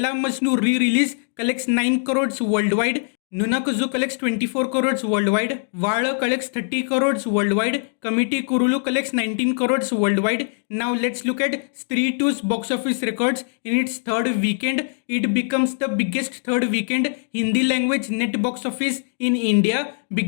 Majnu re-release collects 9 crores worldwide, Nunakazu collects 24 crores worldwide, Vaala collects 30 crores worldwide, Committee Kurulu collects 19 crores worldwide. Now let's look at Stree 2's box office records in its third weekend. It becomes the biggest third weekend Hindi language net box office in India,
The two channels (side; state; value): right; silent; digital silence